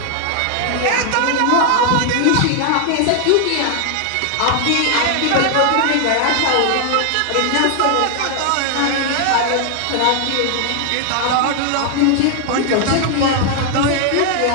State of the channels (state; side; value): different; both; correlation 0.00